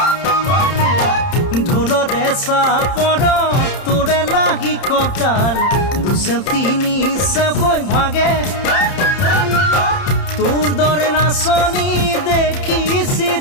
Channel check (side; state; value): right; late; 30 ms